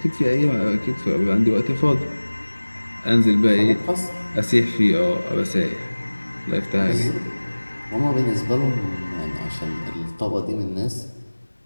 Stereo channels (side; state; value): both; inverted; correlation -1.00